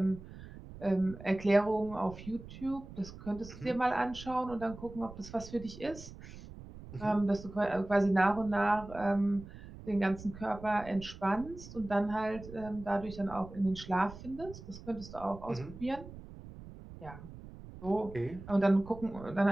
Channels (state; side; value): noise; right; rumble, 15 dB below the sound